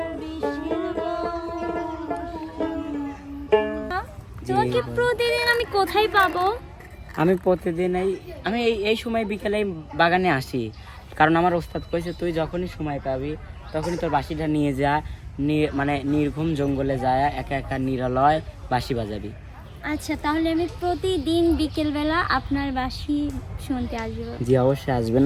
বিষের তোমাকে প্রতিদিন আমি কোথায় পাবো? আমি প্রতিদিন এই সময় বিকেলে বাগানে আসি, কারণ আমার ওস্তাদ কইছে তুই যখনই সময় পাবি তখনই তোর বাঁশিটা নিয়ে যা, মানে নির্ঘুম জঙ্গলে যায় একা একা নিরালয় বাঁশি বাজাবি। আচ্ছা, তাহলে আমি প্রতিদিন বিকেলবেলা আপনার বাঁশি শুনতে আসবো। জি অবশ্যই আসবেন,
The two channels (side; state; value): both; identical; correlation 1.00